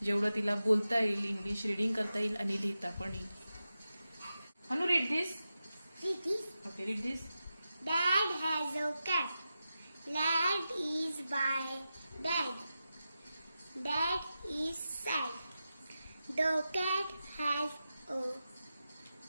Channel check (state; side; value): inverted; both; correlation -0.91